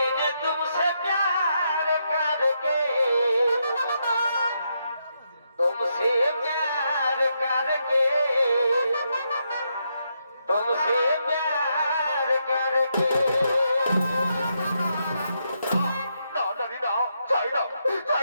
तुमसे प्यार करके, तुमसे प्यार करके, तुमसे प्यार करके। না নারী না, চাই না,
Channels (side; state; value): both; inverted; correlation -0.80